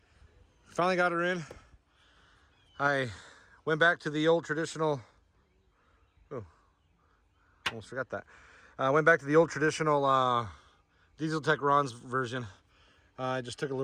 Finally got her in. I went back to the old traditional, almost forgot that. I went back to the old traditional Diesel Tech Ron's version. I just took a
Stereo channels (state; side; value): identical; both; correlation 1.00